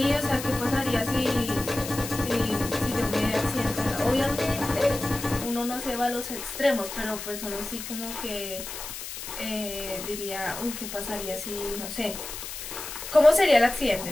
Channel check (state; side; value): noise; left; hiss, 9 dB below the sound